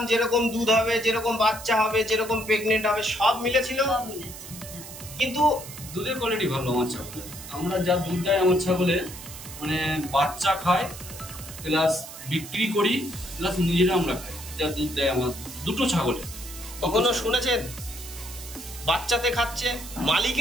যেরকম দুধ হবে, যেরকম বাচ্চা হবে, যেরকম প্রেগনেন্ট হবে, সব মিলেছিল। কিন্তু দুধের কোয়ালিটি ভালো আমার ছাগলে। আমরা যা দুধ দেয় আমার ছাগলে, মানে বাচ্চা খায় প্লাস বিক্রি করি প্লাস নিজেরা আমরা খাই, যা দুধ দেয় আমার দুটো ছাগলে। কখনো শুনেছেন বাচ্চাতে খাচ্ছে,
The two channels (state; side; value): noise; right; hiss, 13 dB below the sound